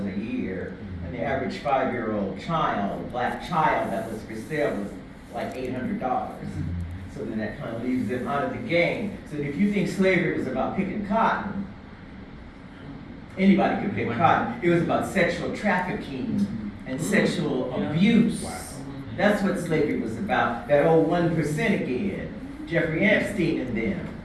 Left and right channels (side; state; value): both; identical; correlation 1.00